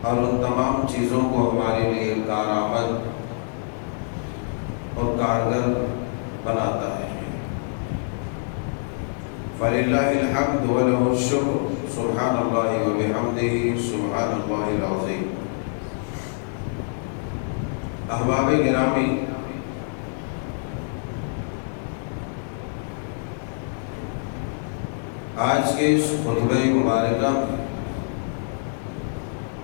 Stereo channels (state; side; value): silent; right; 62 dB below the other